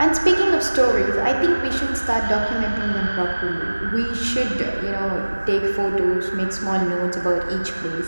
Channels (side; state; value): both; inverted; correlation -1.00